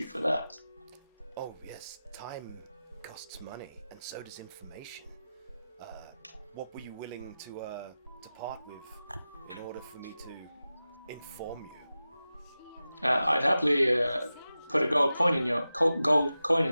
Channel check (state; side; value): inverted; both; correlation -0.94